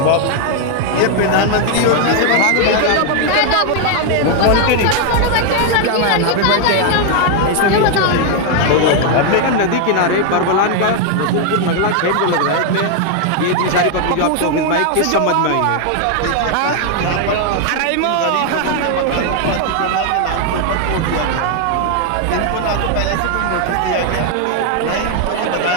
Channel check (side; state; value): both; different; correlation 0.00